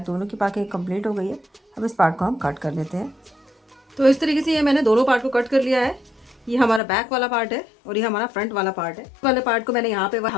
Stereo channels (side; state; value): right; drops out; at 6.8 s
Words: दोनों की मार्किंग कंप्लीट हो गई है। अब इस पार्ट को हम कट कर लेते हैं। तो इस तरीके से ये मैंने दोनों पार्ट को कट कर लिया है। ये हमारा बैक वाला पार्ट है और ये हमारा फ्रंट वाला पार्ट है। वाले पार्ट को मैंने यहाँ पे